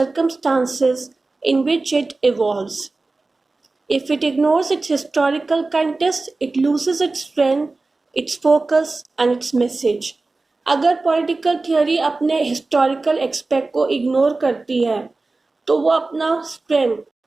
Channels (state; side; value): quieter; left; 3.4 dB